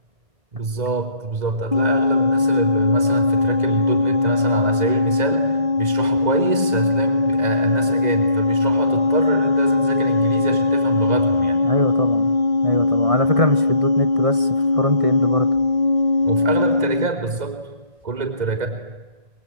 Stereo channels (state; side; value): late; left; 2.0 ms